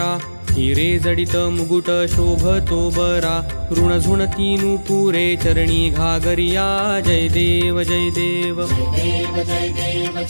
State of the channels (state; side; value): inverted; both; correlation -1.00